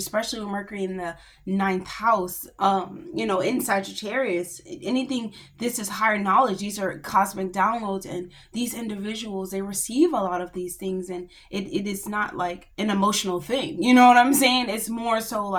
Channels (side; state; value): both; identical; correlation 1.00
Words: with Mercury in the ninth house, in Sagittarius. Anything, this is higher knowledge. These are cosmic downloads, and these individuals, they receive a lot of these things, and it is not like an emotional thing. You know what I'm saying? It's more so